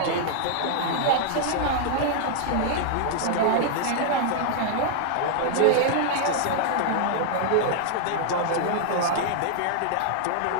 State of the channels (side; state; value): both; different; correlation -0.01